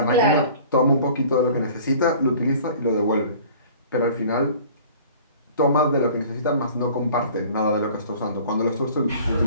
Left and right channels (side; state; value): both; inverted; correlation -0.47